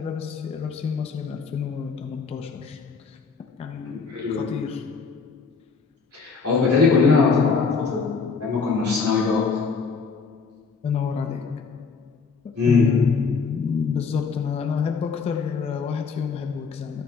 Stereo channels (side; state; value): right; quieter; 5.1 dB